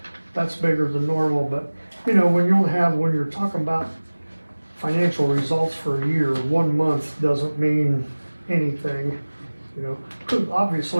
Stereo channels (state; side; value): inverted; both; correlation -1.00